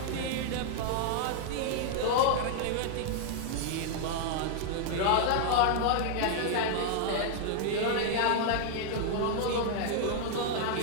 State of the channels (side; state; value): both; different; correlation -0.01